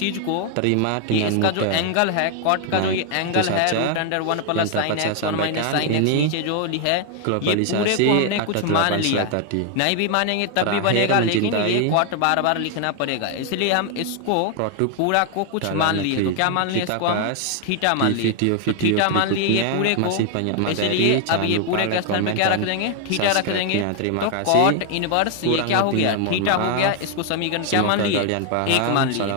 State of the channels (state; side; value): different; both; correlation 0.00